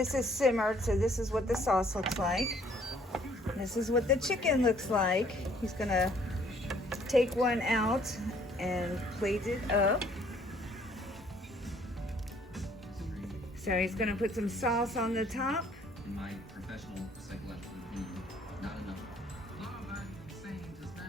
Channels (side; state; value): both; normal; correlation 0.61